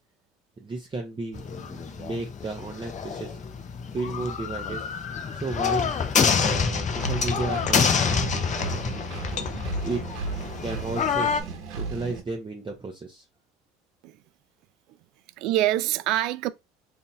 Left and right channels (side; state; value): both; normal; correlation 0.35